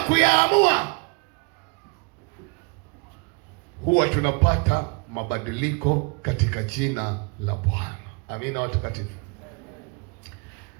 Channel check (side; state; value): left; quieter; 32.4 dB